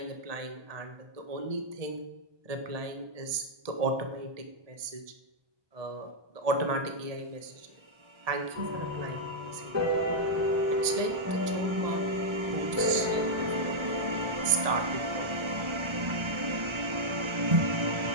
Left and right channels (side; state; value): left; late; 1.7 ms